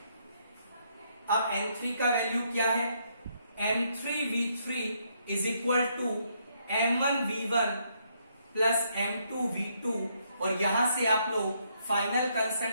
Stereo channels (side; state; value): both; inverted; correlation -0.73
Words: अब N3 का वैल्यू क्या है, M3V3 is equal to M1V1 plus M2V2, और यहां से आप लोग फाइनल